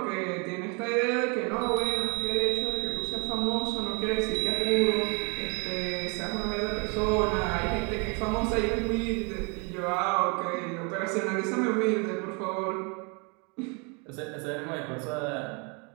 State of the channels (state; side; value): quieter; left; 32.8 dB